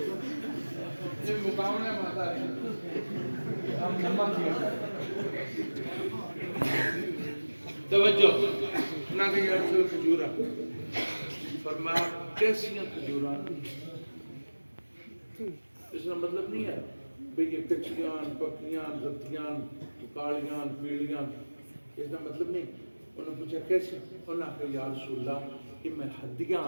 یہ مقامنے ماتا ہے ہم نمک کیا توجہ نہ کہ یہ رسول کھجورہ فرمایا کیسیاں کھجورہ اس کا مطلب نہیں ہے بھئی یہ کچھیاں پکیاں رتیاں کالیاں پیلیاں اس کا مطلب نہیں انہوں نے پوچھا کیسے انہوں نے کہا یا رسول اللہ کہ میں ہدیاں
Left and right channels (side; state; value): both; inverted; correlation -1.00